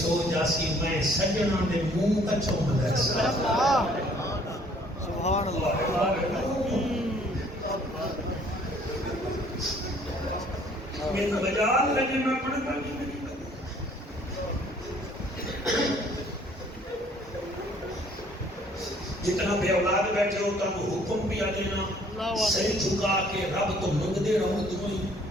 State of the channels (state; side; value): normal; both; correlation 0.59